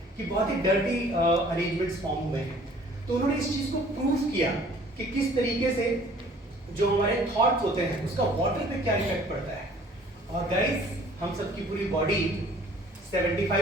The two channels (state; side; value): normal; both; correlation 0.53